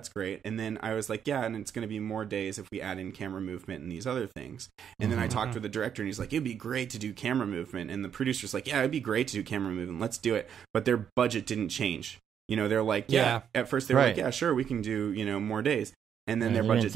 great. And then I was like, yeah, and it's going to be more days if we add in camera movement and these other things. And then I talked with the director and he's like, it'd be great to do camera movement. And the producer's like, yeah, it'd be great to do camera movement. Let's do it. But their budget didn't change. They're like, at first they were like, yeah, sure, we can do, more days. And then their budget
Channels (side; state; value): left; quieter; 8.4 dB